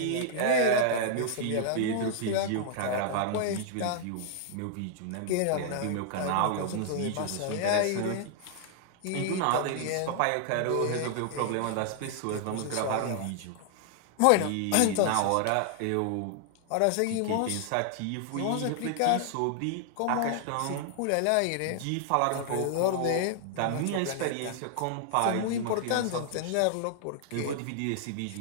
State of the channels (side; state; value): both; different; correlation -0.01